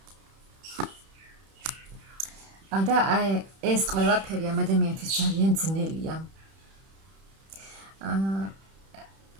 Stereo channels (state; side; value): late; left; 31 ms